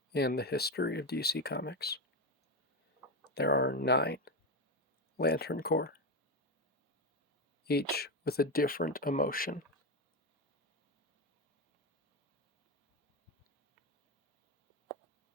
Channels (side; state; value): both; normal; correlation 0.13